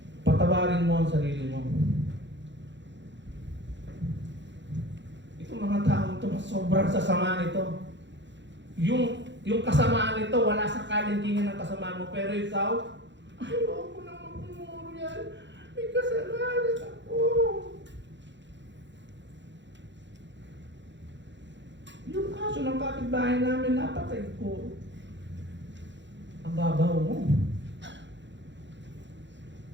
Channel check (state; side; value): late; left; 0.53 ms